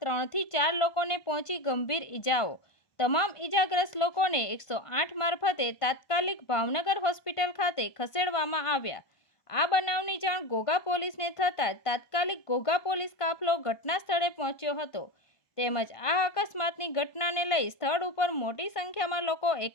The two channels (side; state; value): right; late; 1.2 ms